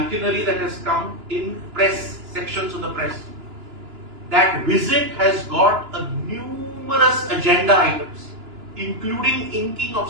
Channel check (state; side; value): late; left; 2.9 ms